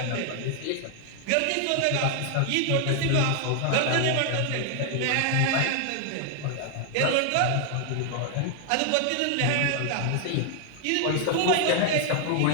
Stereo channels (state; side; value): different; both; correlation 0.00